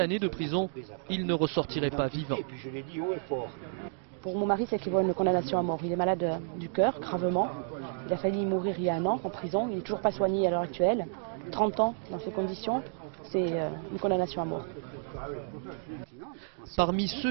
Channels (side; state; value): left; silent; digital silence